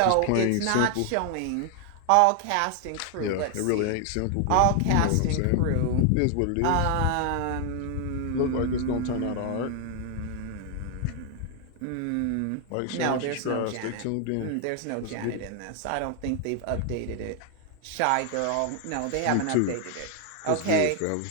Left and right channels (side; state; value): both; different; correlation 0.00